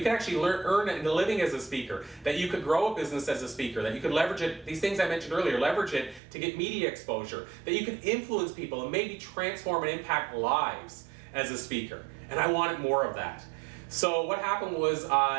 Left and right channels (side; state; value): left; drops out; at 6.2 s